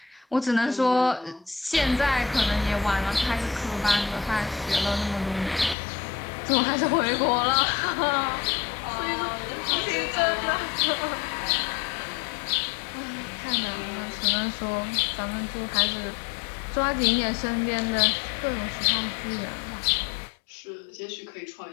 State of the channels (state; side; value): drops out; right; at 5.8 s